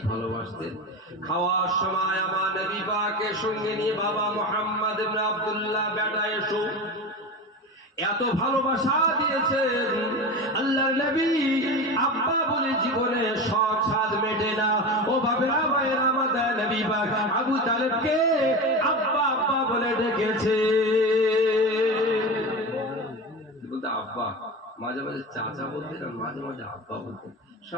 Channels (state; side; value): normal; both; correlation 0.26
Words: ভালোবাসতেন, খাওয়ার সময় আমার নবী পাকের সঙ্গে নিয়ে বাবা মুহাম্মদ ইবনে আব্দুল্লাহ বেটা এসো, এত ভালোবাসা দিয়েছেন আল্লাহর নবী আব্বা বলে জীবনে শখ সাধ মেটে না। ও বাবেরা ভাইরা, আমাদের নবী পাক আবু তালেবকে আব্বা আব্বা বলে ডেকেছে। বলতে আব্বা, মাঝে মাঝে চাচা বলতেন আর মাঝে মাঝে আব্বা বলতেন।